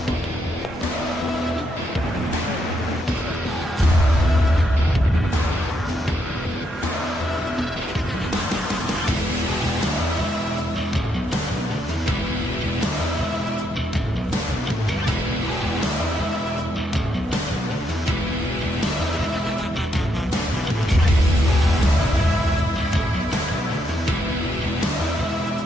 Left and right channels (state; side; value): normal; both; correlation 0.77